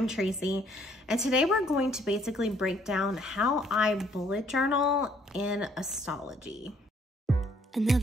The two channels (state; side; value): normal; both; correlation 0.65